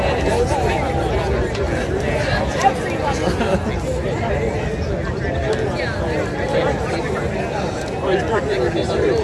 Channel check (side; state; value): both; identical; correlation 1.00